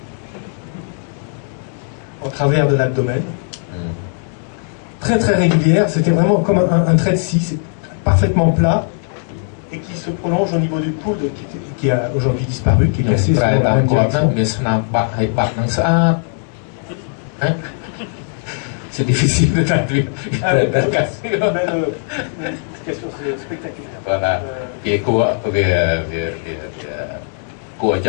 en travers de l'abdomen. Très très régulière, c'était vraiment comme un trait de scie, c'est parfaitement plat et qui se prolonge au niveau du coude qui a aujourd'hui disparu, qui est cassé selon la même direction. C'est difficile de traduire. Une cassure spectaculaire. Voilà. Et quoi,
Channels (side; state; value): right; silent; digital silence